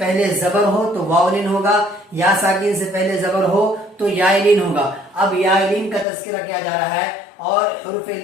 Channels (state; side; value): drops out; right; at 6.1 s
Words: زبر ہو تو واو لین ہوگا، یا ساکن سے پہلے زبر ہو تو یا لین ہوگا۔ اب یا لین کا تذکرہ کیا جا رہا ہے اور حروف